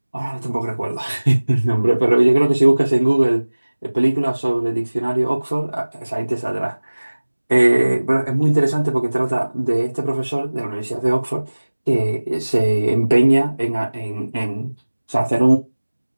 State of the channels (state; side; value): inverted; both; correlation -1.00